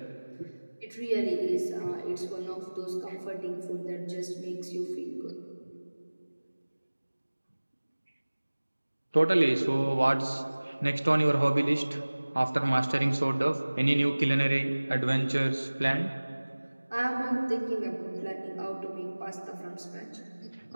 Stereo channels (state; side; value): inverted; both; correlation -1.00